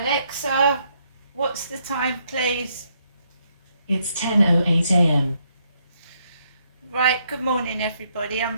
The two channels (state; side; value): inverted; both; correlation -0.74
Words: what's the time please? It's 10:08 a.m. Right, good morning everybody. I'm